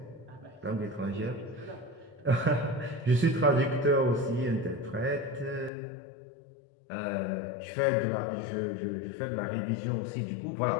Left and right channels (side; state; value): right; drops out; at 5.7 s